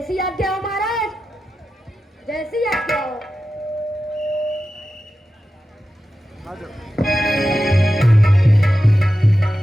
आज्ञा हो महाराज, जैसी आज्ञा हो।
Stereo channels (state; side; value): normal; both; correlation 0.92